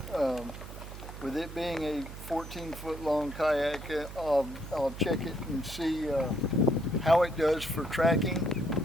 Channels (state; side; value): noise; right; hum, 12 dB below the sound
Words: With it being a 14-foot long kayak, I'll check it and see how it does for tracking,